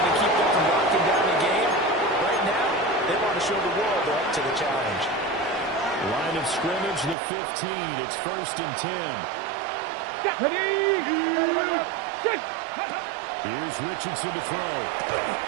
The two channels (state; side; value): drops out; left; at 7.2 s